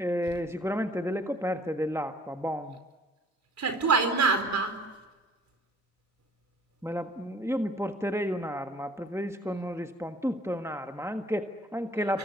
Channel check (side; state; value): both; normal; correlation 0.53